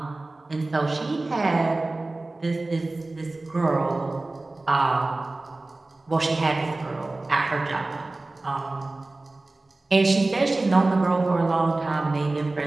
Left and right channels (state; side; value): quieter; left; 3.1 dB